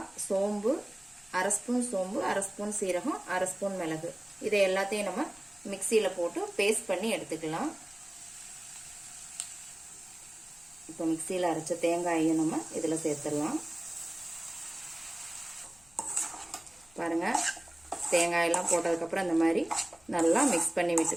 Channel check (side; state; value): left; noise; rumble, 29 dB below the sound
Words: சோம்பு, 1/2 ஸ்பூன் சோம்பு, 1/2 ஸ்பூன் சீரகம், 1/2 ஸ்பூன் மிளகு, இதை எல்லாத்தையும் நம்ம மிக்சியில் போட்டு பேஸ்ட் பண்ணி எடுத்துக்கலாம். இப்போ மிக்சியில் அரைச்ச தேங்காயையும் நம்ம இதில் சேர்த்துடலாம். பாருங்க, தேங்காயெல்லாம் போட்டதுக்கப்புறம் இந்த மாதிரி நல்லா மிக்ஸ் பண்ணி